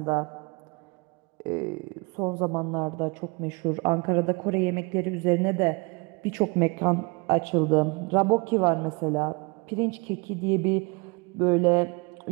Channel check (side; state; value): left; quieter; 28.7 dB